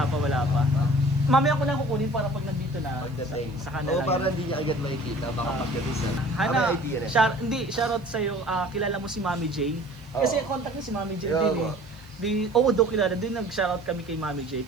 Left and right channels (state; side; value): noise; right; hiss, 30 dB below the sound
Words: pa. Mamaya ko lang kukunin para pag nandito na sa kanila. Oo, para hindi niya agad makikita. Baka pagdating na. Hana, May idea na. shoutout sa'yo. Kilala mo si Mami J? Kasi contact niya si Mami J Yeah, din eh. Do kilala din, nag-shoutout kami kay Mami J.